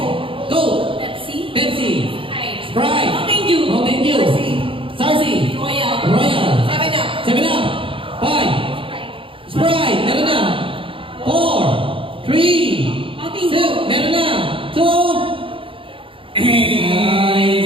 Go! Pepsi. Pepsi. Sprite. Sprite. Mountain Dew. Mountain Dew. Sarsi. Royal. Royal. 7-Up. 7-Up. 5. Sprite. Meron na. 4. 3. Mountain Dew. Meron na. 2.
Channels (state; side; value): late; left; 0.25 ms